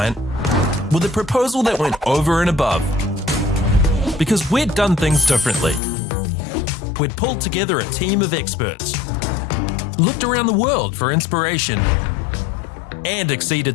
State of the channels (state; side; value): drops out; right; at 5.8 s